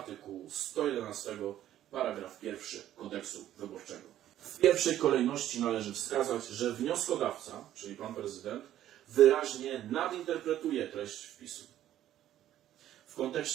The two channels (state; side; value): quieter; left; 12.3 dB